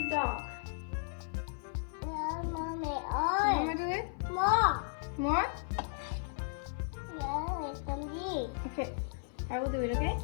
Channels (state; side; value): silent; right; 54 dB below the other